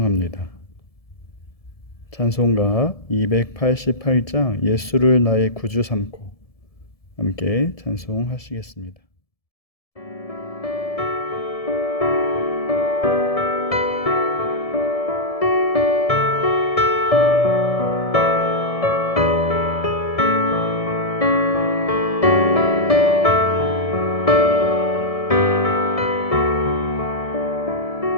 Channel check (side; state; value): right; late; 1.7 ms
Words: 찬송가 288장 예수를 나의 구주 삼고 함께 찬송하시겠습니다.